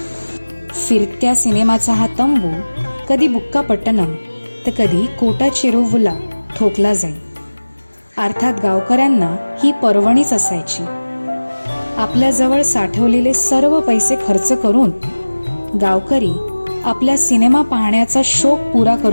फिरत्या सिनेमाचा हा तंबू कधी बुक्कापट्टणम तर कधी कोटाचेरुवला ठोकला जाई. अर्थात गावकऱ्यांना ही पर्वणीच असायची. आपल्याजवळ साठवलेले सर्व पैसे खर्च करून गावकरी आपल्या सिनेमा पाहण्याचा शौक पुरा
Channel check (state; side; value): inverted; both; correlation -1.00